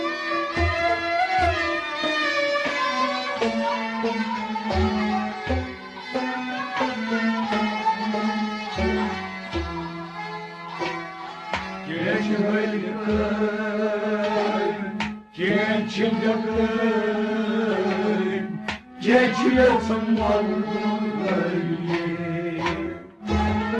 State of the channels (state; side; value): identical; both; correlation 1.00